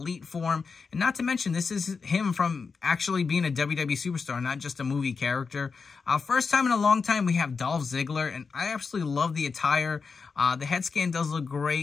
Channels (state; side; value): quieter; right; 5.1 dB